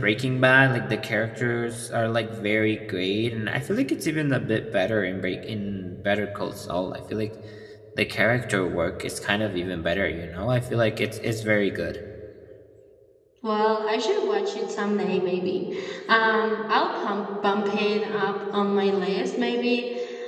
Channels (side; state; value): both; identical; correlation 1.00